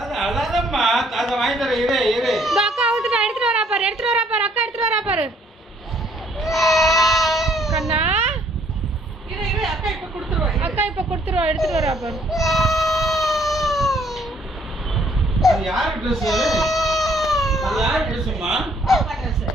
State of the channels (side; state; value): both; normal; correlation 0.64